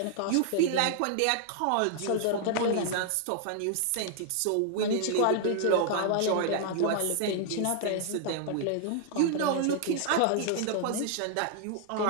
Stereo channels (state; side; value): different; both; correlation 0.00